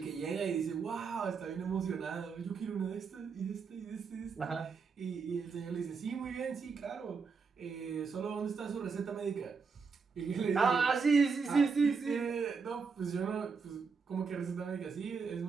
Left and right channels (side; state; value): left; quieter; 5.2 dB